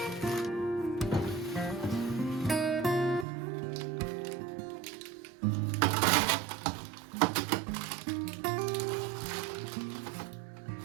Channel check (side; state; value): left; drops out; at 3.2 s